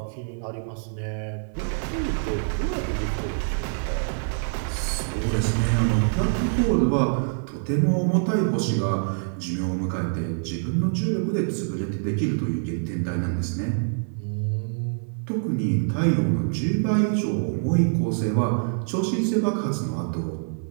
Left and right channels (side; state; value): left; silent; 57 dB below the other